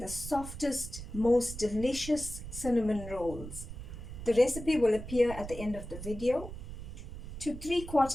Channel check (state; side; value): noise; right; rumble, 10 dB below the sound